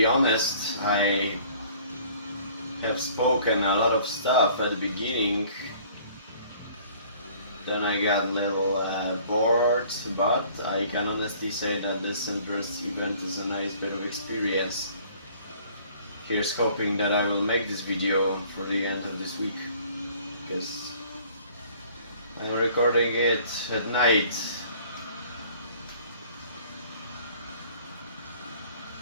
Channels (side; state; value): both; inverted; correlation -0.54